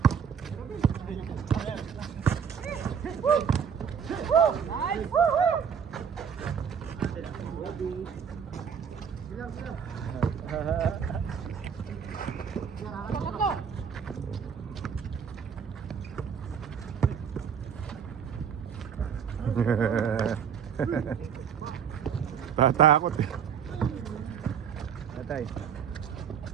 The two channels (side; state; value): left; quieter; 7.4 dB